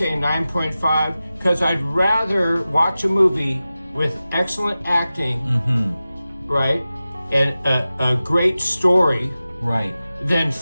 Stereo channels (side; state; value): both; inverted; correlation -0.95